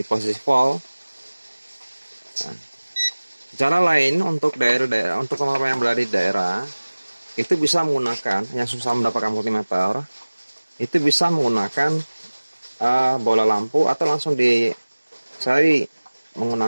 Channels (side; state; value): both; inverted; correlation -1.00